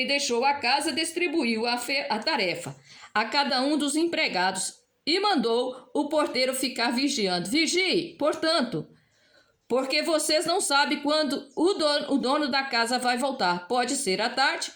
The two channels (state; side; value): identical; both; correlation 1.00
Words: deixou a casa, distribuiu a tarefa a cada um dos empregados e mandou o porteiro ficar vigiando. Vigie, portanto, porque vocês não sabem quando o dono da casa vai voltar. Pode ser à tarde,